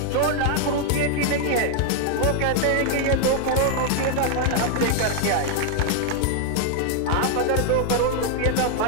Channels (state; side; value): different; both; correlation 0.00